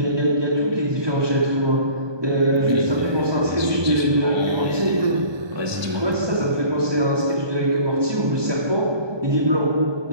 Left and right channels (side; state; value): left; late; 1.2 ms